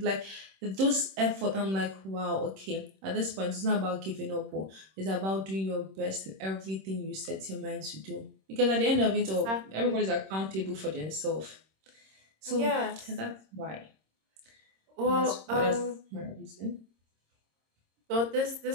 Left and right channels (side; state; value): left; late; 26 ms